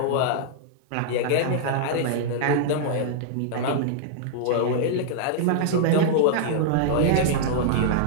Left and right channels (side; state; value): both; different; correlation -0.01